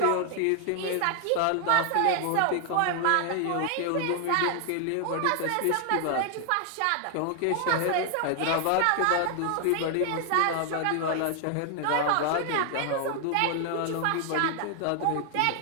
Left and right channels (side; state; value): both; different; correlation 0.00